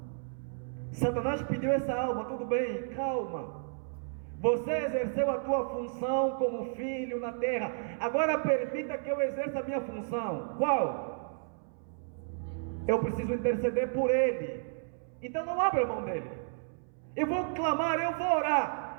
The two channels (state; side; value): silent; left; 56 dB below the other